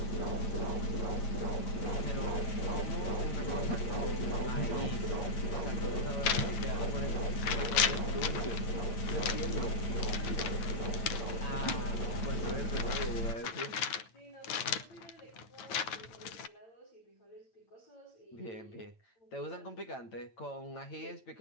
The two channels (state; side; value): late; right; 9.0 ms